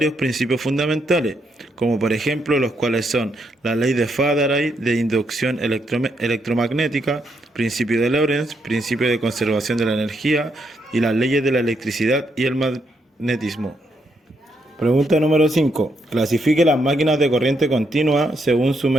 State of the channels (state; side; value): normal; both; correlation 0.78